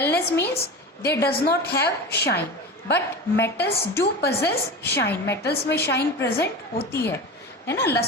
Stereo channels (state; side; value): normal; both; correlation 0.29